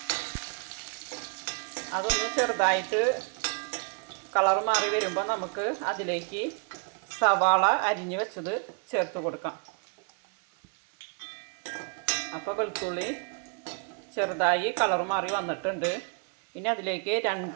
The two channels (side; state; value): left; quieter; 39.7 dB